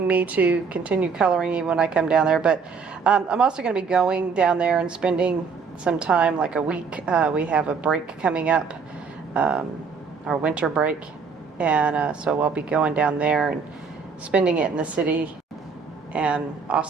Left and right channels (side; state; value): left; quieter; 5.4 dB